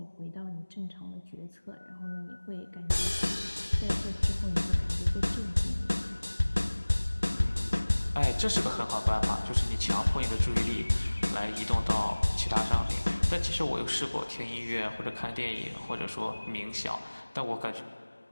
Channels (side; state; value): both; inverted; correlation -1.00